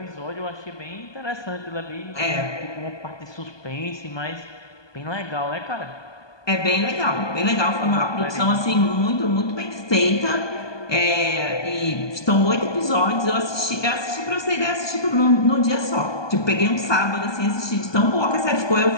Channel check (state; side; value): late; right; 1.2 ms